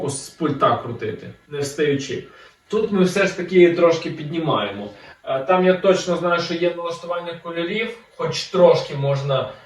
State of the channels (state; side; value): identical; both; correlation 1.00